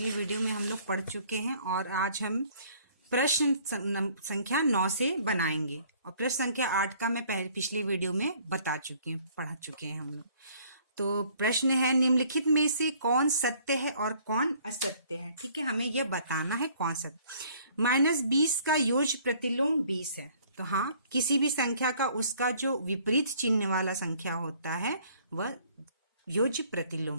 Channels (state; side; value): inverted; both; correlation -0.58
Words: वीडियो में हम लोग पढ़ चुके हैं और आज हम प्रश्न संख्या 9 से बनाएंगे और प्रश्न संख्या 8 का मैं पिछली वीडियो में पढ़ा चुके हैं हम लोग। तो प्रश्न है, निम्नलिखित में से कौन सत्य है और कौन असत्य है। ठीक है, हमें यह बताना है कौन सत्य। -20 का योज्य प्रतिलोम 20 है। तो हाँ, किसी भी संख्या का उसका जो विपरीत चिन्ह वाला संख्या होता है वह योज्य प्रतिलोम